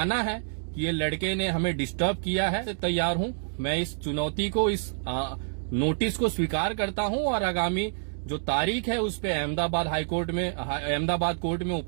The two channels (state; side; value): silent; left; digital silence